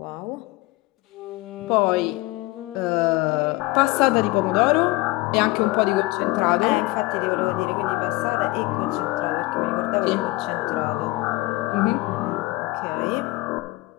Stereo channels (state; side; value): quieter; right; 21.1 dB